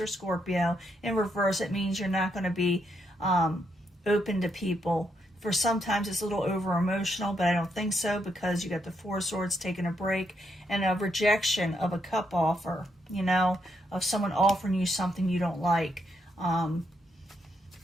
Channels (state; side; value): normal; both; correlation 0.78